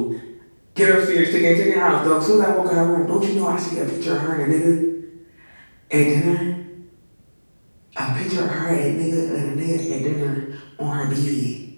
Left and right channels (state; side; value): inverted; both; correlation -1.00